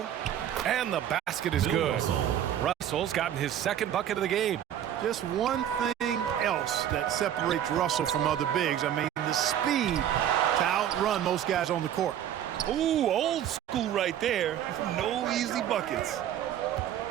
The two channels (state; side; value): quieter; left; 10.6 dB